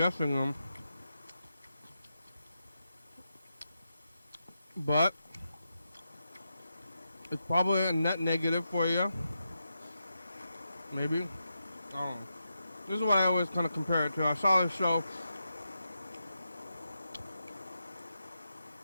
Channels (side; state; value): both; inverted; correlation -0.87